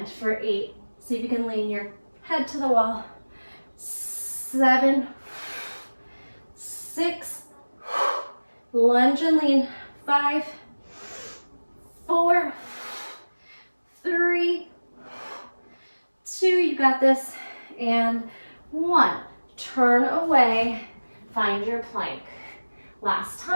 for 8. See if you can lean your head to the wall. 7, 6, lunge and lean. 5, 4, 3, 2, you got this, and 1. Turn away, find your plank. Last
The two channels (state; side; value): inverted; both; correlation -1.00